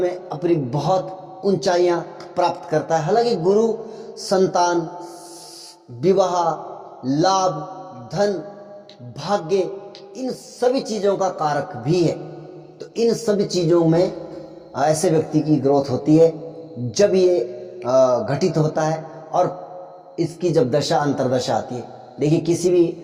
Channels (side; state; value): both; identical; correlation 1.00